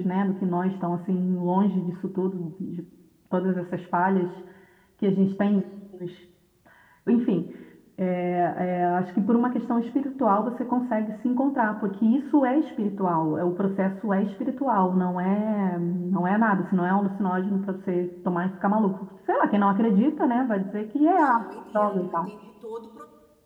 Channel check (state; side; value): identical; both; correlation 1.00